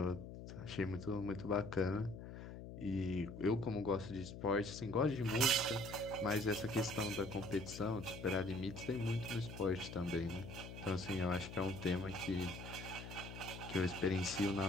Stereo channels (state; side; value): noise; left; hum, 10 dB below the sound